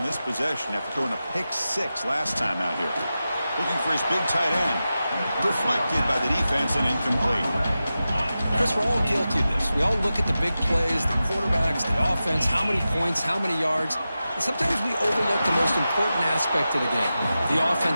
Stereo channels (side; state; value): both; inverted; correlation -0.93